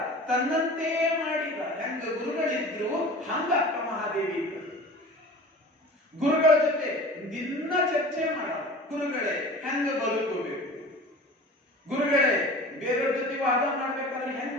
ತನ್ನಂತೆ ಮಾಡಿದ. ಹೆಂಗ ಗುರುಗಳಿದ್ರು ಹಂಗ ಅಕ್ಕ ಮಹಾದೇವಿ ಇದ್ರು. ಗುರುಗಳ ಜೊತೆ ದಿನ ಚರ್ಚೆ ಮಾಡ. ಗುರುಗಳೇ ಹೆಂಗ ಬದುಕಬೇಕು, ಗುರುಗಳೇ ಬೇರೆಯವ್ರ ಜೊತೆ ವಾದ ಮಾಡ್ಬೇಕಾದ್ರೆ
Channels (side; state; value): both; normal; correlation 0.39